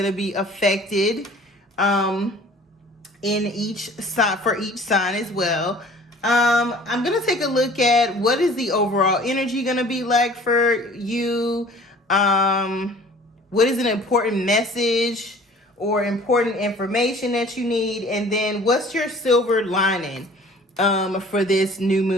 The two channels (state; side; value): normal; both; correlation 0.49